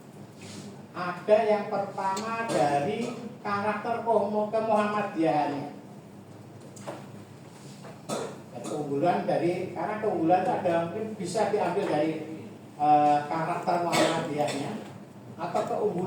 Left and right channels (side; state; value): both; identical; correlation 1.00